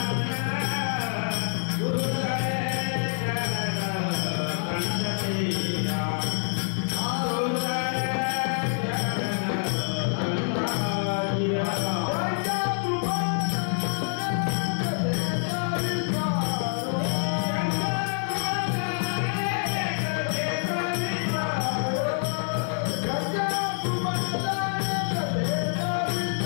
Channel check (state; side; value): silent; right; 55 dB below the other